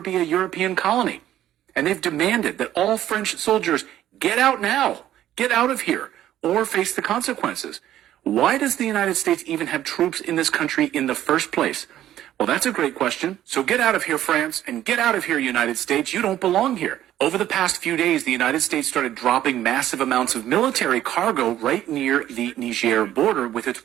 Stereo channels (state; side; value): quieter; left; 12.5 dB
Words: be a European colony. And they've demanded that all French soldiers get out now, get out of here, or face the consequences. Why does the United States even have troops in this country in the first place? Well, that's a great question. So get out of here, France, and get out of here, United States. You don't belong here. Over the past few days, the United States started dropping massive amounts of military cargo right near the Niger border with its